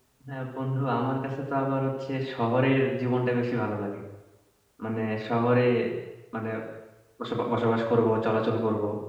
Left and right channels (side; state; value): both; identical; correlation 1.00